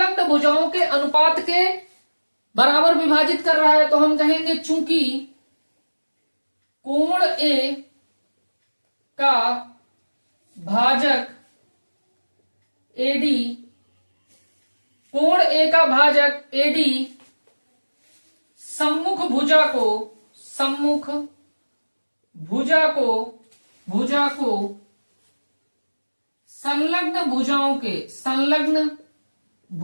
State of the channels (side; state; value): both; inverted; correlation -1.00